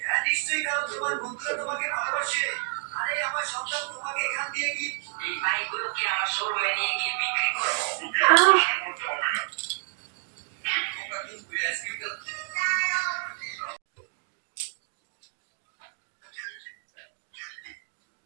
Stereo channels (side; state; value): left; silent; 59 dB below the other